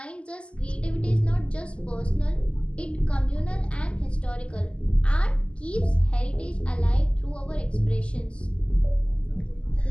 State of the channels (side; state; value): right; late; 0.055 ms